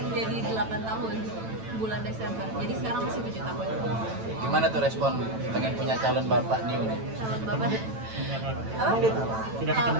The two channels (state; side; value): late; left; 9.0 ms